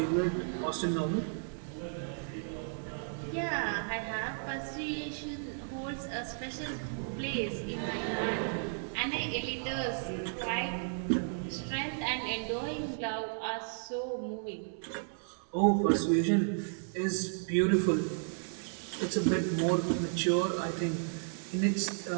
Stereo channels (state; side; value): silent; left; 55 dB below the other